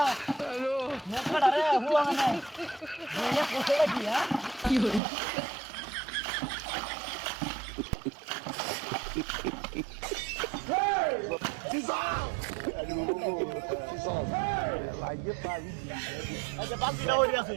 হ্যালো নৌকাটা রে হুয়া না বইয়া কোসে লাগি হ্যাঁ কি হলো আচ্ছা বাকিটা হয়ে গেছে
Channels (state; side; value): drops out; left; at 5.0 s